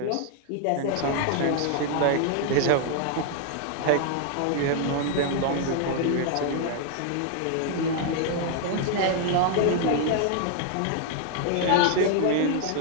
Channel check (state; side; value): different; both; correlation 0.00